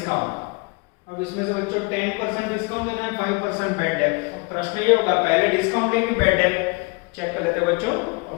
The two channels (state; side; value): quieter; right; 28.9 dB